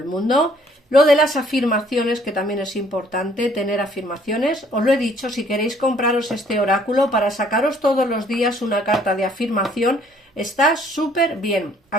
mundo. Lo de las afirmaciones, que también es importante tener afirmaciones. Os lo he dicho, si queréis compraros este oráculo para sacaros todos los días una carta de afirmación, está súper bien.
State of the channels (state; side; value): normal; both; correlation 0.61